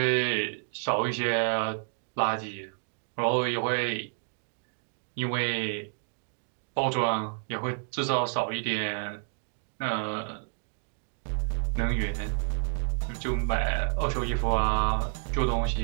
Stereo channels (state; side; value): silent; left; digital silence